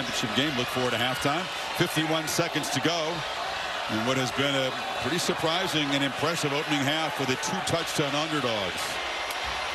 game. Look forward to halftime. 51 seconds to go. And what has been a pretty surprising and impressive opening half for the 2-touchdown underdogs.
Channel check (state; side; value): identical; both; correlation 1.00